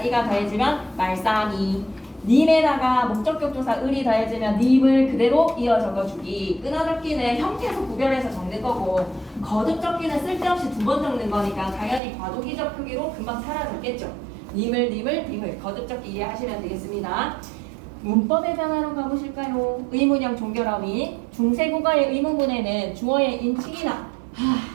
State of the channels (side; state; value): left; drops out; at 12.0 s